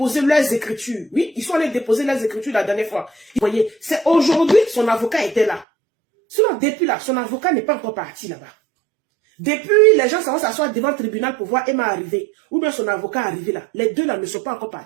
leurs écritures. Oui, ils sont allés déposer leurs écritures la dernière fois. Vous voyez, c'est aujourd'hui son avocat était là. Sinon, depuis là, son avocat n'est pas encore parti là-bas. Depuis, les gens vont s'asseoir devant le tribunal pour voir Emma arriver. Ou bien son avocat arriver là. Les deux là ne sont pas encore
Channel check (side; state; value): left; drops out; at 5.7 s